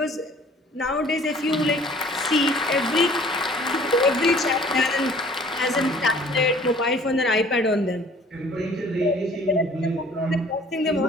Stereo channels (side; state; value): both; normal; correlation 0.53